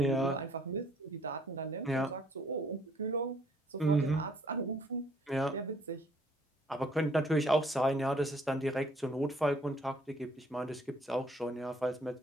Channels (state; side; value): normal; both; correlation 0.63